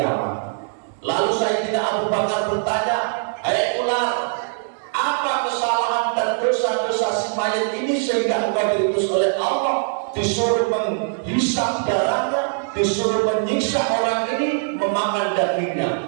Lalu Sayyidina Abu Bakar bertanya, hai ular, apa kesalahan dan dosa-dosa si mayat ini sehingga engkau diutus oleh Allah, disuruh menghisap darahnya, disuruh menyiksa orang ini, memakan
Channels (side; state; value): left; silent; digital silence